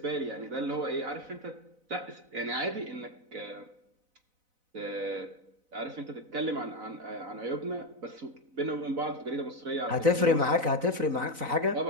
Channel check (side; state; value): left; late; 4.0 ms